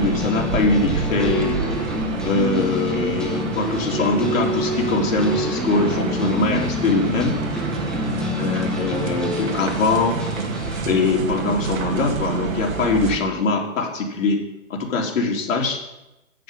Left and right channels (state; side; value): normal; both; correlation 0.03